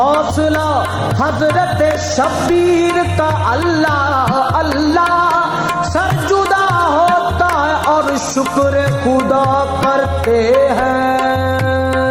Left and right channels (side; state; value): both; identical; correlation 1.00